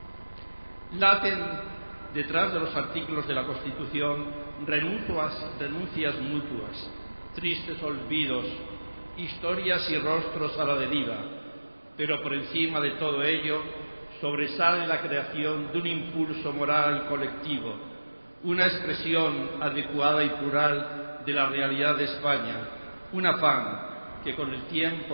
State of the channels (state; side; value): inverted; both; correlation -1.00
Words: Laten detrás de los artículos de la Constitución renuncias mutuas, tristes olvidos, historias y rostros a la deriva, pero por encima de todo ello sobresale la creación de un impulso moral colectivo, una expresión adecuada y plural de la realidad de España, un afán que con el